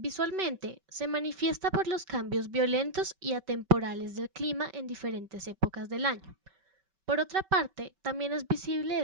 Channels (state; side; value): late; left; 5.2 ms